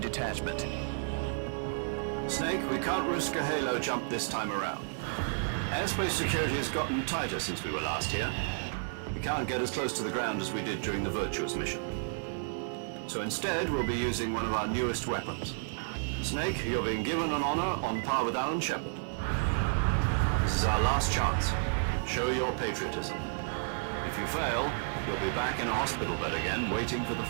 Snake, we can't risk a halo jump this time around. Airspace security has gotten tighter since we were last here. We can't get as close to the ground as we did during the Virtuos mission. So instead, we'll be using one of our newest weapons. Snake, you're being given an honor on par with Alan Shepard. This is our last chance. Show your patriotism. If you fail, you'll be back in a hospital bed again, waiting for the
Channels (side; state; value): left; silent; 57 dB below the other